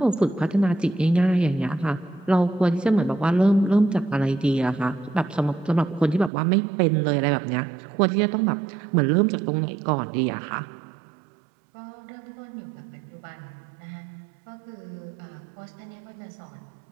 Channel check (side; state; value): left; drops out; at 6.3 s